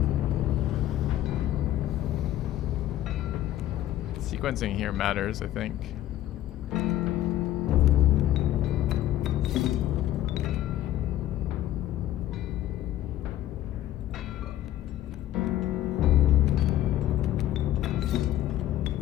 Sequencing here matters, I think.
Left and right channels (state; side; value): quieter; right; 13.3 dB